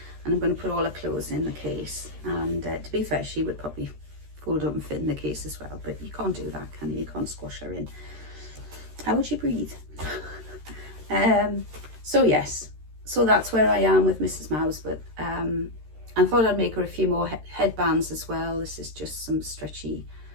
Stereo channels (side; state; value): left; late; 13 ms